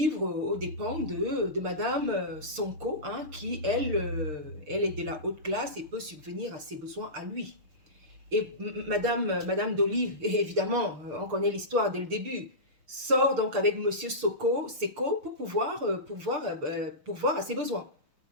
aux dépens de Madame Sonko, hein, qui elle est de la haute classe et peut subvenir à ses besoins à lui. Et Madame Dolly, évidemment, on connaît l'histoire dès le début, sort donc avec Monsieur Seko pour pouvoir pourvoir à ses besoins,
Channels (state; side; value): late; left; 6.6 ms